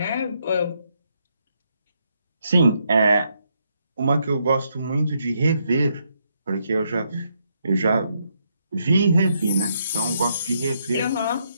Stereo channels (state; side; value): inverted; both; correlation -0.77